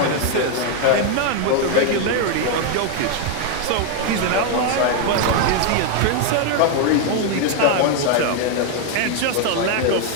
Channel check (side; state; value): both; different; correlation 0.00